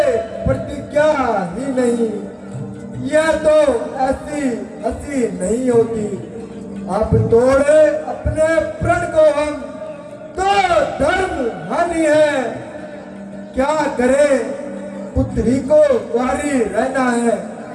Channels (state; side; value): identical; both; correlation 1.00